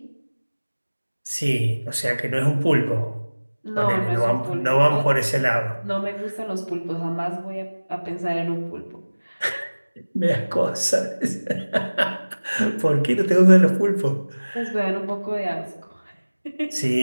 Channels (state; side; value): inverted; both; correlation -1.00